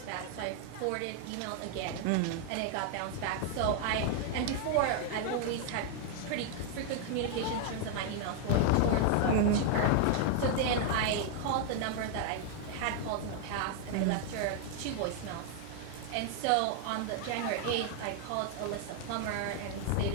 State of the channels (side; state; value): both; different; correlation 0.00